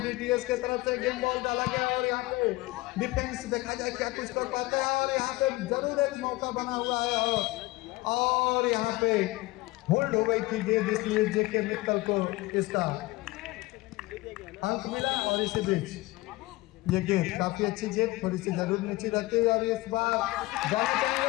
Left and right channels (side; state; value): right; quieter; 20.5 dB